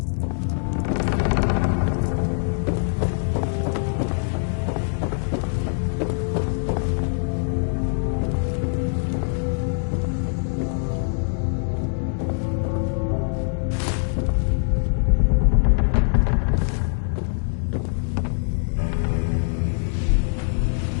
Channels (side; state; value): right; silent; 63 dB below the other